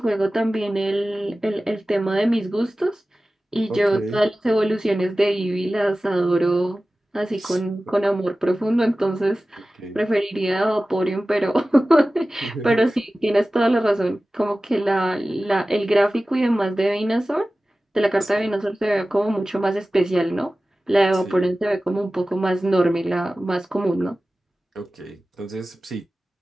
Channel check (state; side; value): normal; both; correlation 0.96